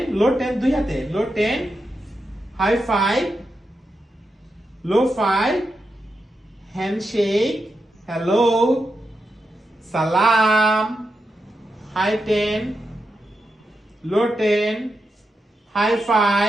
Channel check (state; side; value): normal; both; correlation 0.87